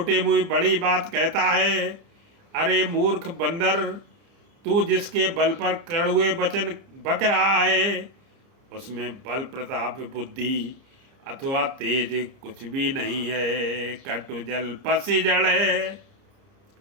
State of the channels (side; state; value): left; late; 30 ms